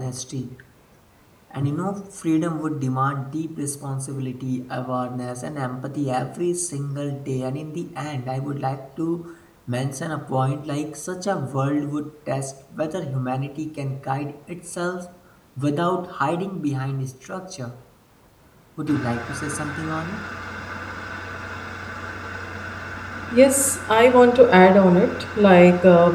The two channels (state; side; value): identical; both; correlation 1.00